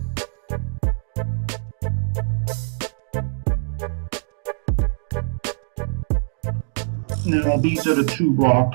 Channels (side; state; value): left; silent; digital silence